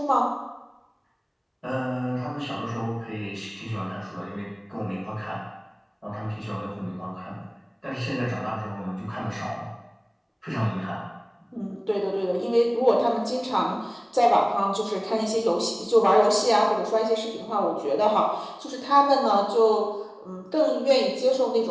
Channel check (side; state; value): both; identical; correlation 1.00